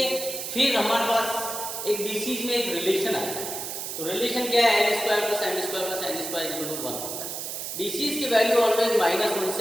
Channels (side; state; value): right; noise; hiss, 6 dB below the sound